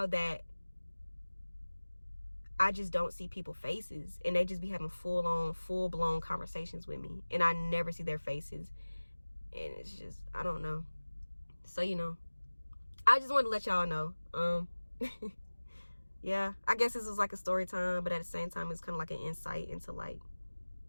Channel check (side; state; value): both; inverted; correlation -1.00